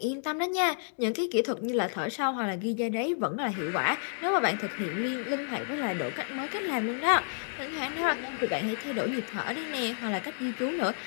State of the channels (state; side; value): silent; right; digital silence